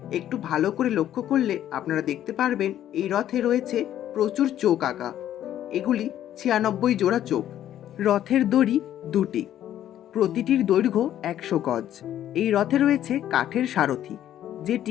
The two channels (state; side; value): quieter; right; 11.6 dB